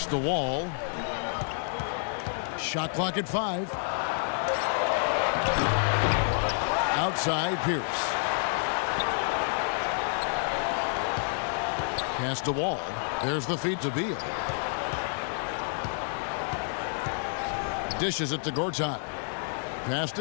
the Wall. Shot clock at 5. Outside, Pierce. Pass to Wall. There's the feed to Beal. Dishes it to Gortat. Pass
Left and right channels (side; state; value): right; silent; digital silence